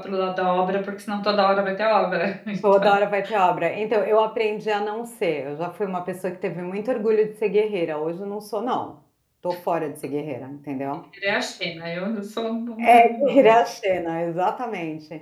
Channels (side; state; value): both; identical; correlation 1.00